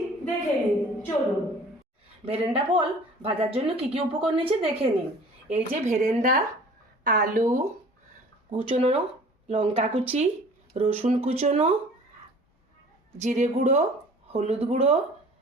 দেখে নিন, চলুন। ভেরেন্ডা ফল ভাজার জন্য কি কি উপকরণ নিয়েছি দেখে নিন। এই যে ভেরেন্ডা, আলু কুচনো, লঙ্কা কুচি, রসুন কুচনো, জিরে গুঁড়ো, হলুদ গুঁড়ো,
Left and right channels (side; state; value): both; normal; correlation 0.48